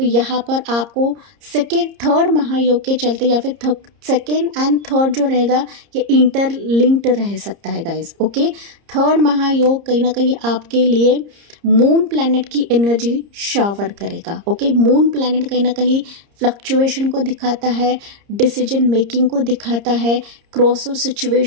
यहाँ पर आपको थर्ड महायोग के चलते या फिर सेकेंड एंड थर्ड जो रहेगा ये इंटरलिंक्ड रह सकता है गाइज। ओके, थर्ड महायोग कहीं ना कहीं आपके लिए मून प्लैनेट की एनर्जी शावर करेगा। ओके, मून प्लैनेट कहीं ना कहीं फ्लक्चुएशन को दिखाता है, डिसीजन मेकिंग को दिखाता है, क्रॉसओवर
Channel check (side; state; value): left; late; 30 ms